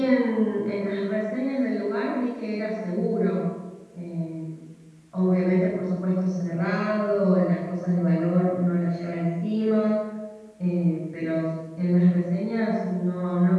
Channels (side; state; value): both; identical; correlation 1.00